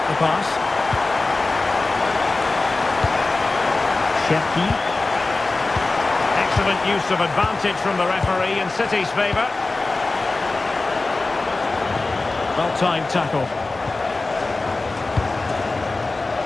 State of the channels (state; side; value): quieter; right; 3.4 dB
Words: the pass. Cherki. Excellent use of advantage from the referee in City's favour. Well-timed tackle.